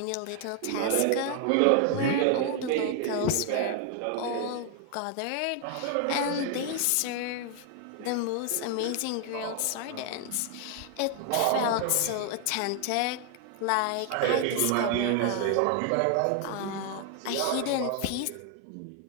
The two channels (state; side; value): different; both; correlation 0.00